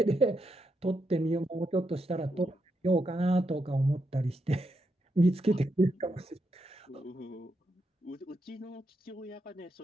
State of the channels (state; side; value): normal; both; correlation 0.83